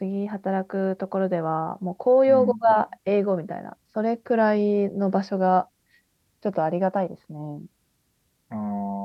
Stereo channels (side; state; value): both; identical; correlation 1.00